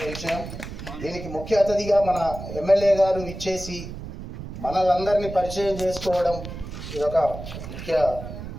విషయం. దీనికి ముఖ్య అతిథిగా మన ఎమ్మెల్యే గారు ఇచ్చేసి మనలందరినీ పరిచయం చేసుకోవడం ఇదొక ముఖ్య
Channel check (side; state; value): right; noise; rumble, 10 dB below the sound